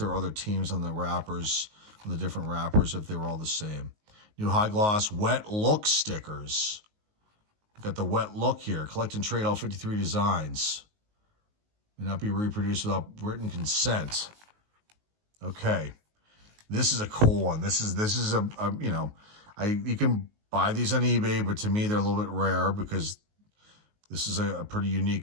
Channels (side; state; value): left; late; 19 ms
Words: were other teams on the wrappers, on the different wrappers, if they were all the same. New high gloss wet look stickers. We've got the wet look here. Collect and trade all 53 designs. May not be reproduced without written consent. Okay, this is a cool one. This is a you know, you can buy these on eBay, but to me they're a little bit rare because this is a pretty